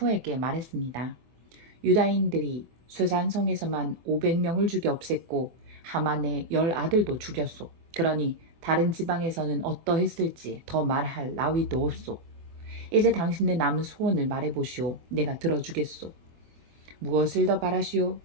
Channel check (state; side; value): late; left; 24 ms